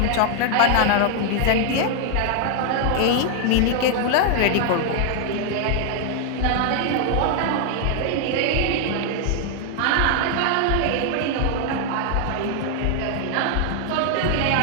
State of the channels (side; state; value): both; different; correlation 0.00